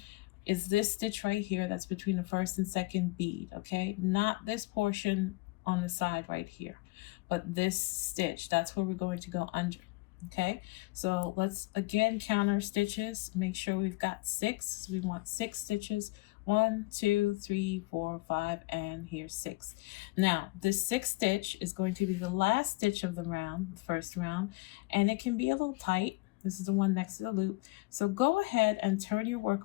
is this stitch right here that's between the first and second bead, okay? Not this portion on the side right here, but this stitch, that's where we're going to go under, okay? So let's again count our stitches, make sure we've got 6. So we want 6 stitches. 1, 2, 3, 4, 5, and here's 6. Now, this 6th stitch is going to be the last stitch of the round, the first round, and it can be a little tight. This is the one next to the loop. So go ahead and turn your work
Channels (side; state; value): right; quieter; 22.2 dB